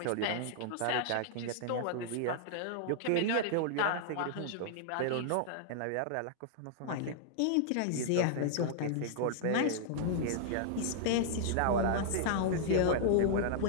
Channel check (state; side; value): different; both; correlation -0.01